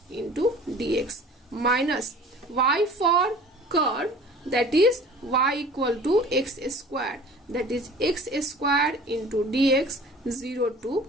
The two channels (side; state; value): both; normal; correlation 0.45